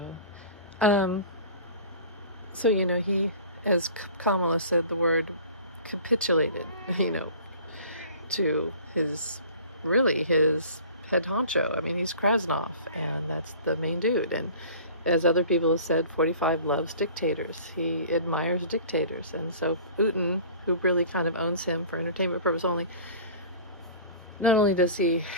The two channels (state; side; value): inverted; both; correlation -0.43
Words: So, he, as Kamala said, the word capitulated, to his head honcho. I mean, he's Krasnov, and that's the main dude. And as other people have said, 45 loves dictators. He admires dictators. And so Uten, who really kind of owns him for entertainment purpose only, not only is he